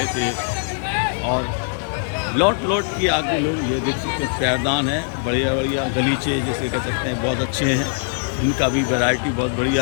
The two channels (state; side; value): silent; right; digital silence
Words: थे। और लौट के आगे लोग ये देख सकते हैं, पैरदान है, बढ़िया बढ़िया गलीचे जिसे कह सकते हैं, बहुत अच्छे हैं। इनका भी वैरायटी बहुत